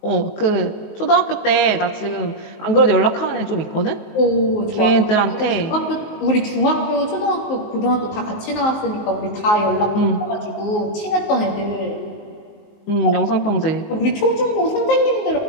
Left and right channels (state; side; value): late; right; 19 ms